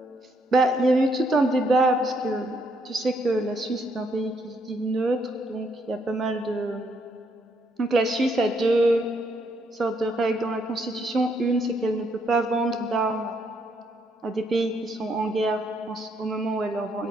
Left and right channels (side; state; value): both; normal; correlation 0.73